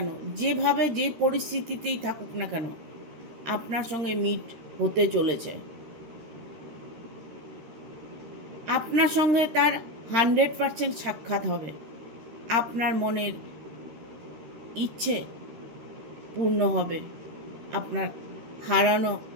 যেভাবে যে পরিস্থিতিতেই থাকুক না কেন, আপনার সঙ্গে মিট হতে চলেছে। আপনার সঙ্গে তার 100% সাক্ষাৎ হবে। আপনার মনের ইচ্ছে পূর্ণ হবে। আপনার হারানো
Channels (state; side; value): late; left; 13 ms